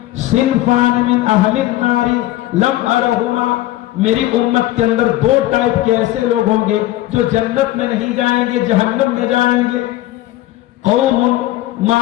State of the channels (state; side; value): quieter; right; 15.6 dB